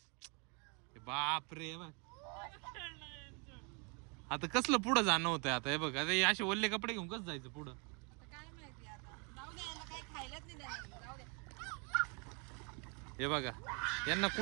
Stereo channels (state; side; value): quieter; left; 34.1 dB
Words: बाप रे बघ. आता कसलं पुढं जाणं होतंय आता हे बघ. आता हे असे ओल्ले कपडे घेऊन कसं जायचं पुढं. काय माहिती आता. जाऊ दे, याला काही खायलाच नाही देणार. जाऊ दे. हे बघा यांना